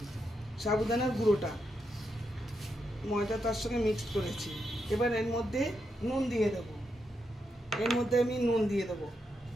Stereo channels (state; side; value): normal; both; correlation 0.83